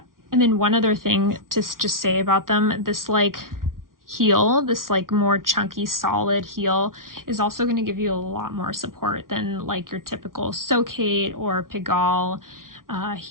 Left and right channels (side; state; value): left; late; 0.91 ms